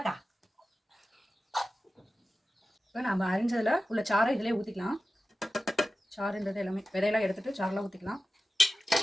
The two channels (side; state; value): both; normal; correlation 0.94